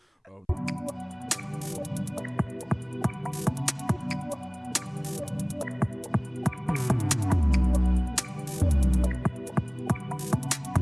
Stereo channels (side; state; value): both; identical; correlation 1.00